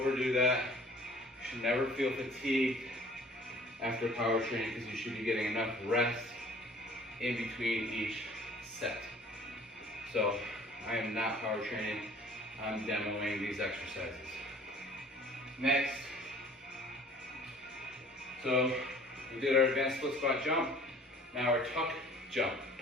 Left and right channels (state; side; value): normal; both; correlation 0.51